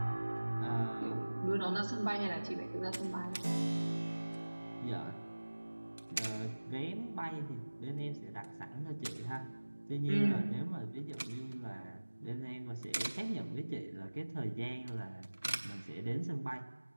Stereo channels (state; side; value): inverted; both; correlation -1.00